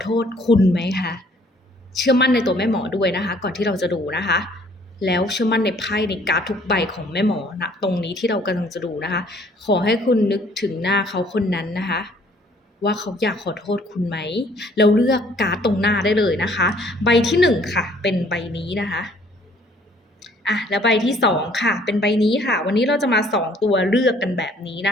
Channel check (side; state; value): both; normal; correlation 0.59